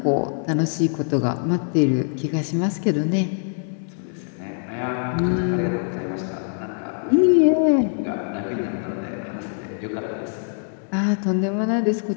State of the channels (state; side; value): silent; right; 63 dB below the other